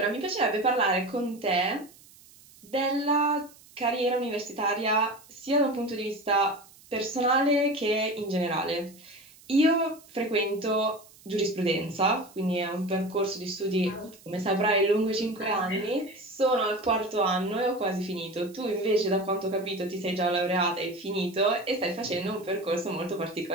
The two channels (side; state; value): right; noise; hiss, 24 dB below the sound